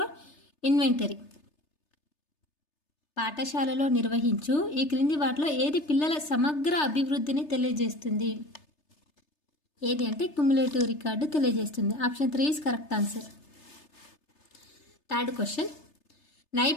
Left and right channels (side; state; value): right; late; 3.3 ms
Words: inventory. పాఠశాలలో నిర్వహించు ఈ క్రింది వాటిలో ఏది పిల్లల సమగ్ర అభివృద్ధిని తెలియజేస్తుంది? ఏది అంటే క్యుములేటివ్ రికార్డు తెలియజేస్తుంది. Option 3 is correct answer. Third question,